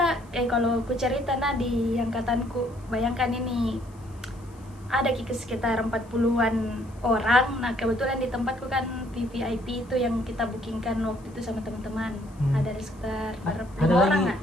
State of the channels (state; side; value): noise; left; hiss, 29 dB below the sound